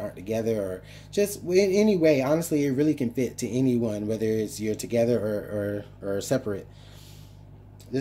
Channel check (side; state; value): both; identical; correlation 1.00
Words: together, or just in any way, honestly, it really can fit to anyone, whether it's you're together or separate.